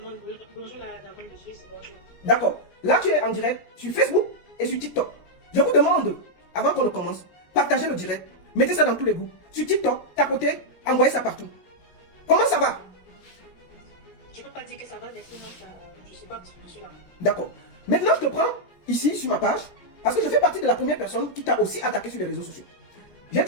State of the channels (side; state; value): right; late; 17 ms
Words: bonjour la dame de Suisse, bonjour. D'accord. Là, tu es en direct sur Facebook et sur TikTok. Je vous demande, avant qu'on ne commence, partagez le direct. Mettez ça dans tous les groupes. Sur TikTok, tapotez, envoyez ça partout. Comment ça va? Je ne peux pas dire que ça va, mais sinon, je ne suis pas là. D'accord. Maintenant, je te prends ici sur ma page parce que je fais partie de la première personne qui t'a aussi attaqué sur les réseaux sociaux. J'ai